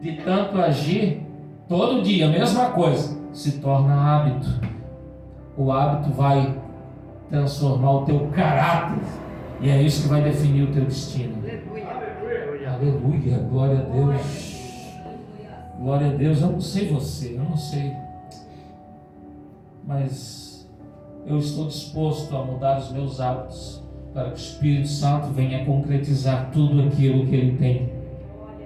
tanto agir, todo dia, a mesma coisa, se torna hábito. O hábito vai transformar o teu caráter. E é isso que vai definir o teu destino. Aleluia, glória a Deus. Glória a Deus. Eu não sei você, eu não sei. Mas eu estou disposto a mudar os meus hábitos para que o Espírito Santo venha concretizar tudo aquilo que Ele tem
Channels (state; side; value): identical; both; correlation 1.00